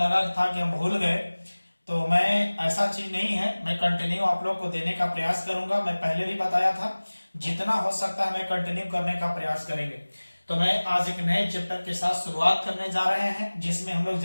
था कि हम भूल गए। तो मैं, ऐसा चीज नहीं है, मैं कंटिन्यू आप लोग को देने का प्रयास करूंगा। मैं पहले भी बताया था, जितना हो सकता है मैं कंटिन्यू करने का प्रयास करेंगे। तो मैं आज एक नए चैप्टर के साथ शुरुआत करने जा रहे हैं, जिसमें हम लोग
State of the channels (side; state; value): both; inverted; correlation -1.00